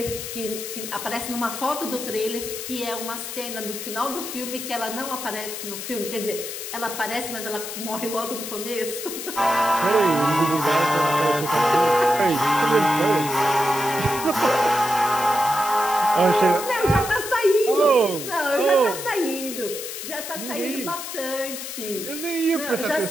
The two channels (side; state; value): left; noise; hiss, 8 dB below the sound